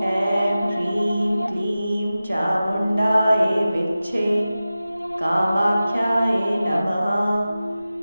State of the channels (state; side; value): inverted; both; correlation -0.95